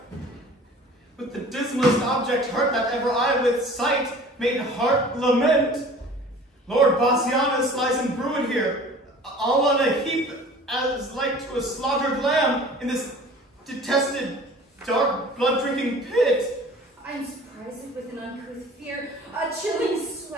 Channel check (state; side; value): normal; both; correlation 0.45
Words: With the dismalest object hurt that ever I with sight made heart lament. Lord Bassianus lies embrued here, all on a heap as like to a slaughtered lamb in this detested, dark, blood-drinking pit. I am surprised with an uncouth fear, a chilling